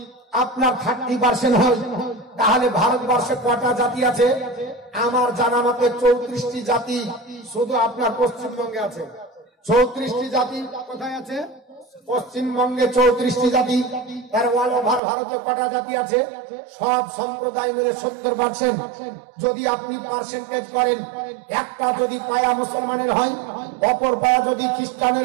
আপনার 30% হয় তাহলে ভারতবর্ষে কটা জাতি আছে? আমার জানা মতে 34টি জাতি শুধু আপনার পশ্চিমবঙ্গে আছে। 34টি জাতি কোথায় আছে? পশ্চিমবঙ্গে 34টি জাতি। তার অল ওভার ভারতে কটা জাতি আছে? সব সম্প্রদায় মিলে 70%। যদি আপনি পার্সেন্টেজ করেন, একটা যদি পায়া মুসলমানের হয়, অপর পায়া যদি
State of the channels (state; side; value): drops out; left; at 15.0 s